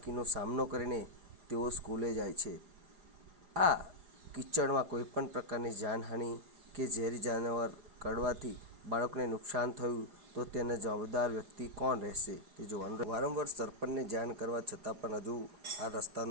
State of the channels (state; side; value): late; left; 4.9 ms